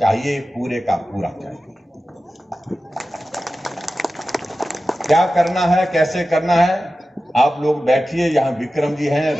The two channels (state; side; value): normal; both; correlation 0.94